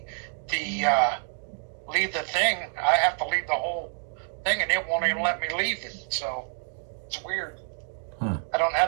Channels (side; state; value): left; silent; 60 dB below the other